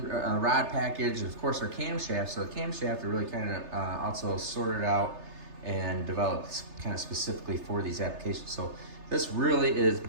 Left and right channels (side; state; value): left; late; 3.3 ms